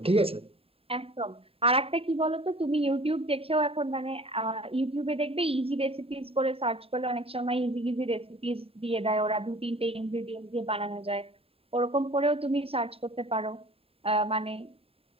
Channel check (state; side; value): late; left; 0.27 ms